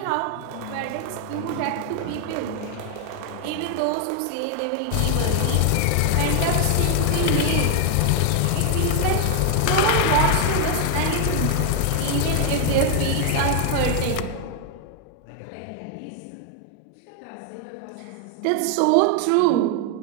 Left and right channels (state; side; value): different; both; correlation 0.00